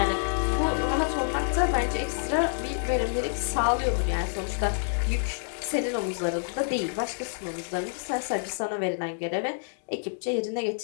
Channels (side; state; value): right; silent; digital silence